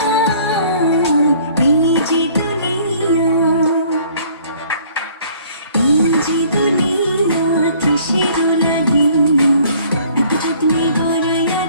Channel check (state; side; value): inverted; both; correlation -0.56